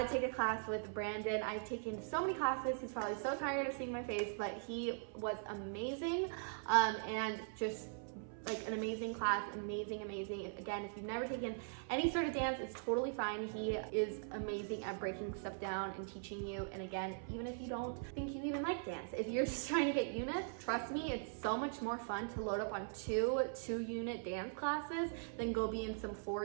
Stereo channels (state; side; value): silent; left; 50 dB below the other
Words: take a class with Brandon. I've taken so many classes. He's probably so tired of seeing my face, but he was amazing, and just like an amazing class, amazing. Again, if you've never taken any sort of dance, it's totally fine. He is amazing at breaking stuff down and teaching you. And again, even if you don't think you even like dance, if you're just trying to get units, trust me, it's so much more fun to load up on two unit dance classes than go be in some